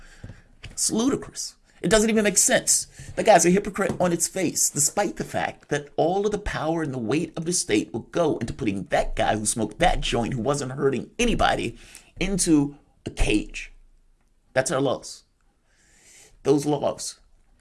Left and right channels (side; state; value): both; identical; correlation 1.00